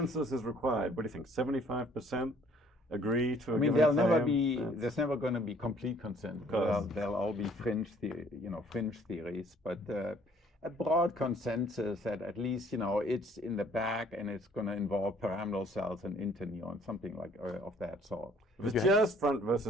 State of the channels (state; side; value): normal; both; correlation 0.59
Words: is required? What do you think? 75% agree to a given claim? There's never going to be complete consensus. There'll all be fringe theories, but a broad consensus that at least it's in the back and it's going to involve pyramidal cells and interneurons, something like of that sort. If it's just front